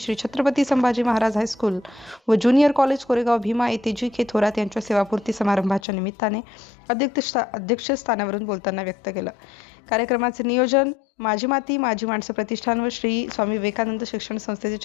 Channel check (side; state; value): right; drops out; at 5.8 s